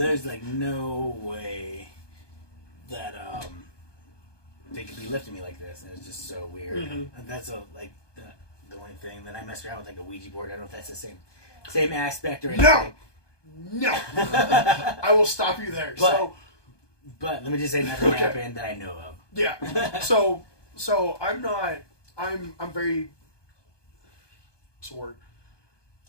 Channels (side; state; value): right; late; 1.2 ms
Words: like no way that they could be lifting me like this, and it's just so weird. Mm-hmm. And that's the only thing. Then I messed around with like a Ouija board. I don't know if that's the same aspect or anything. No. I will stop you there. But let me just say nothing happened that I know of. Yeah. So I'm very. What's the word?